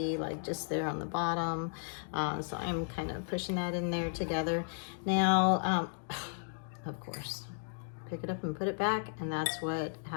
like just there on the bottom. So I'm kind of pushing that in there together. Now, of course, pick it up and put it back, and that's what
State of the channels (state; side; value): silent; right; digital silence